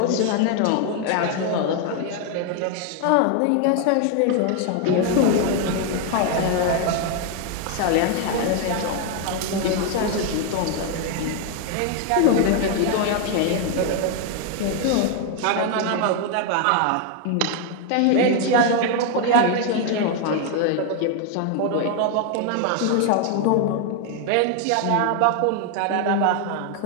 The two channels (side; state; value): both; different; correlation 0.00